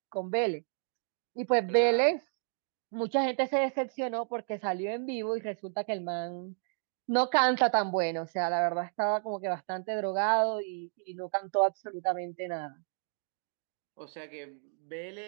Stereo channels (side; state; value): left; silent; digital silence